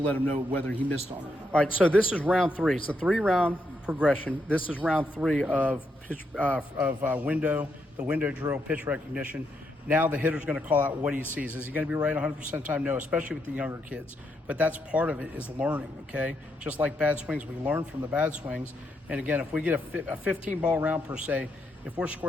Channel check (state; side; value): normal; both; correlation 0.79